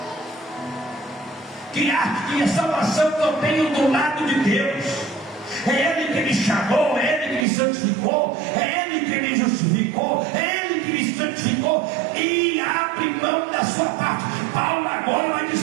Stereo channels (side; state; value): left; drops out; at 7.5 s